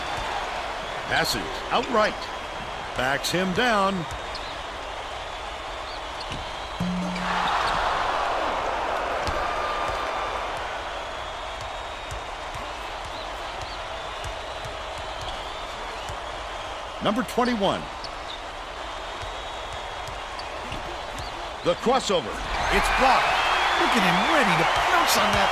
Passes outright. Backs him down. Number 21. The crossover. It's blocked. Look at him ready to pounce on that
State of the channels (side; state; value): both; identical; correlation 1.00